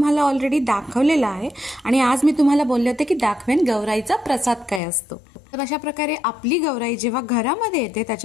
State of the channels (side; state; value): right; drops out; at 4.8 s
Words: ऑलरेडी दाखवलेलं आहे आणि आज मी तुम्हाला बोलले होते की दाखवेन गौराईचा प्रसाद काय असतो। तर अशा प्रकारे आपली गौराई जेव्हा घरामध्ये येते